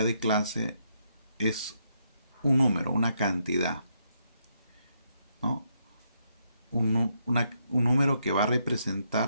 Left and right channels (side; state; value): both; inverted; correlation -0.77